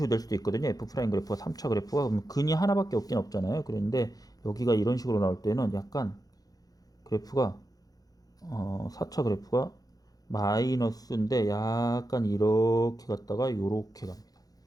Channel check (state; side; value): late; right; 0.18 ms